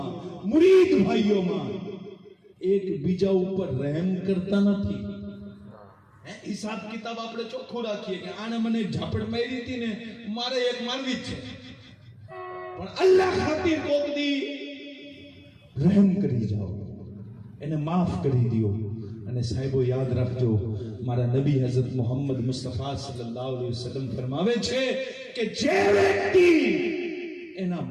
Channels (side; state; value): both; identical; correlation 1.00